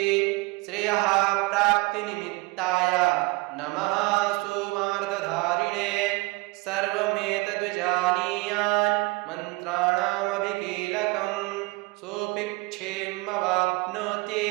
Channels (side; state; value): left; quieter; 24.0 dB